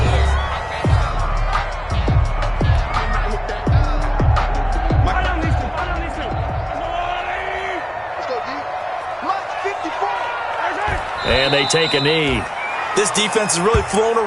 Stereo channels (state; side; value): identical; both; correlation 1.00